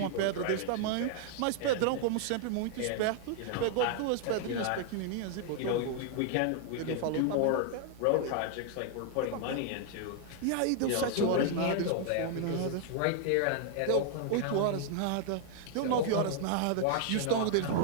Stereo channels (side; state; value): both; different; correlation 0.00